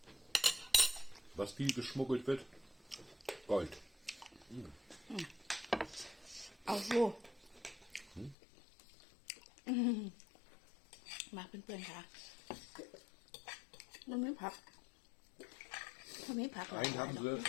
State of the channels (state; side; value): drops out; right; at 8.3 s